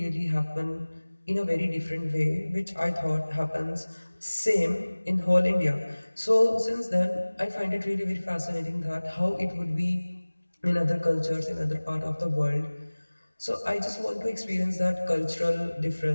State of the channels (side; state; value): both; inverted; correlation -1.00